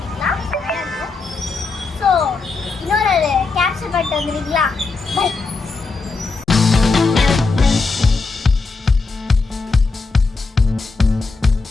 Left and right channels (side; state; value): right; quieter; 4.0 dB